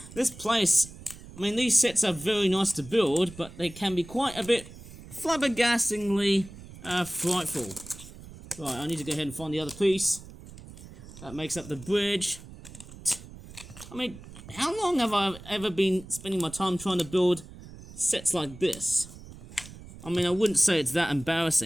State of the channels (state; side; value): noise; right; rumble, 16 dB below the sound